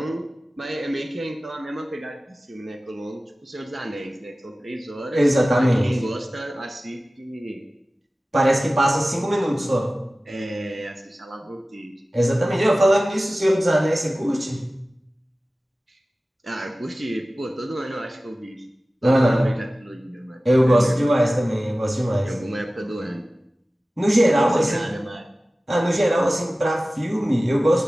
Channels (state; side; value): normal; both; correlation 0.97